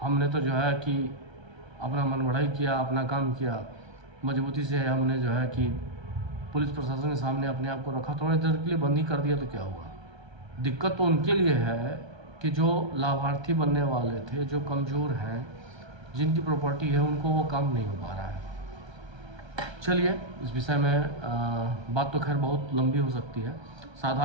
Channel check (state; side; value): late; left; 1.3 ms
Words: हमने तो जो है कि अपना मन बढ़ाई किया, अपना काम किया, मजबूती से हमने जो है कि पुलिस प्रशासन के सामने अपने आप को रखा, थोड़ी देर के लिए बंद ही कर दिया तो क्या हुआ? दिक्कत तो उनके लिए है कि जो लाभार्थी बनने वाले थे, जो कमज़ोर हैं, जिनकी प्रॉपर्टी है, उनको वो काम नहीं हो पा रहा है। चलिए, इस विषय में बात तो खैर बहुत लंबी हो सकती है।